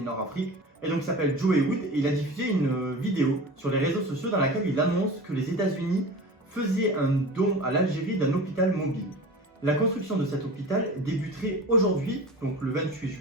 Et donc il s'appelle Joe Wood et il a diffusé une vidéo sur les réseaux sociaux dans laquelle il annonce que les États-Unis faisaient un don à l'Algérie d'un hôpital mobile. La construction de cet hôpital débuterait aujourd'hui, donc le 28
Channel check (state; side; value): normal; both; correlation 0.34